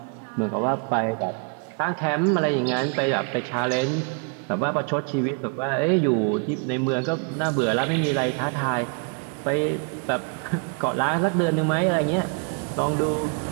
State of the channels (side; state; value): left; quieter; 39.4 dB